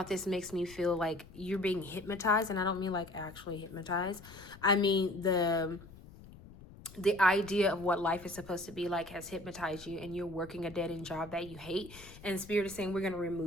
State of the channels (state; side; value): noise; left; rumble, 19 dB below the sound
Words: this makes me feel like you're being hypnotized. And I don't mean like actually hypnotized. I mean the idea of what life is supposed to be like has hypnotized you, and you're working a dead-end job that you hate. And Spirit is saying we're going to